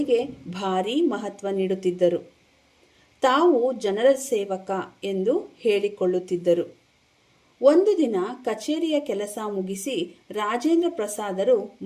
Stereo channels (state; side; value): identical; both; correlation 1.00